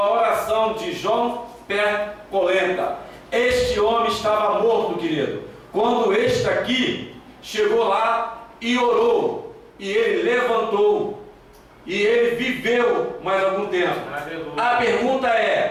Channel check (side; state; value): both; identical; correlation 1.00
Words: oração de João Percolenta. Este homem estava morto, querido, quando este aqui chegou lá e orou, e ele levantou, e ele viveu mais algum tempo. A pergunta